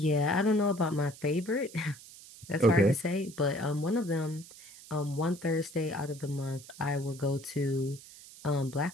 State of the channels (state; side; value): noise; right; hiss, 18 dB below the sound